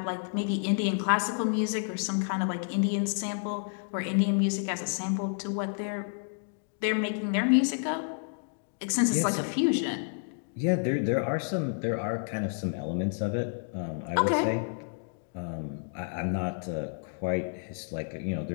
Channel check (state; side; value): silent; right; digital silence